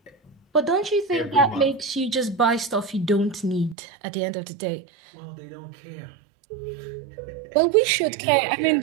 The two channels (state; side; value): drops out; left; at 3.8 s